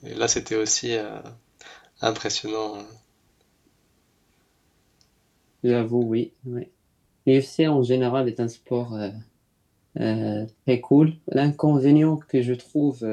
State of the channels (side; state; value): both; identical; correlation 1.00